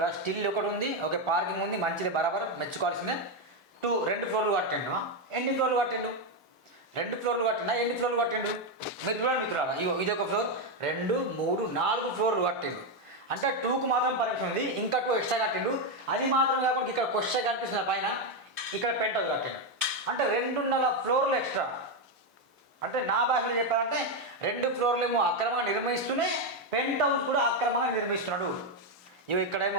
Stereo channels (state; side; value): normal; both; correlation 0.06